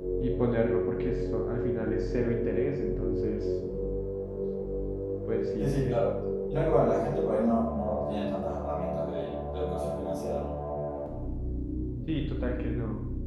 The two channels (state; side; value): identical; both; correlation 1.00